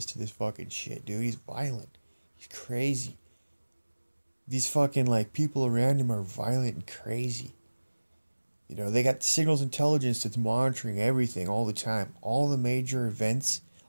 to this fucking shit, dude. He's violent. He's crazy. These fucking, like, people around him are violent and crazy. You know, they got signals intelligence that's monitoring everything all the time. All the major events,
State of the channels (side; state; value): both; inverted; correlation -1.00